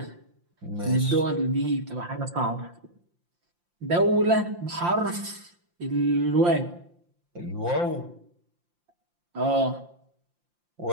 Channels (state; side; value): late; left; 5.7 ms